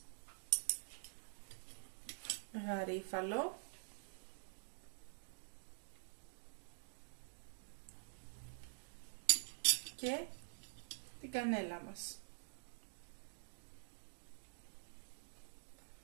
γαρίφαλο, και την κανέλα μας.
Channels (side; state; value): left; silent; digital silence